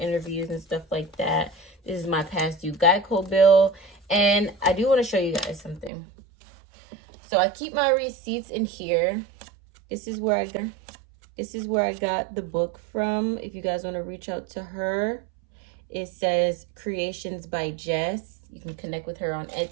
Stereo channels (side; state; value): left; drops out; at 5.9 s